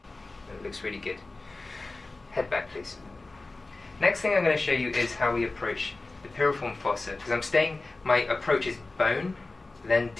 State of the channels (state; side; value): quieter; right; 3.3 dB